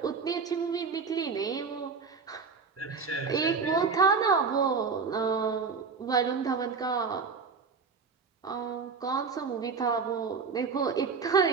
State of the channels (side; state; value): left; quieter; 5.2 dB